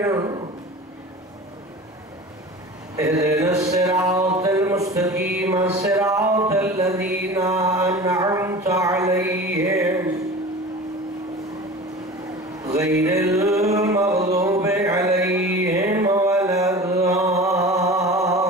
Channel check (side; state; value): both; normal; correlation 0.36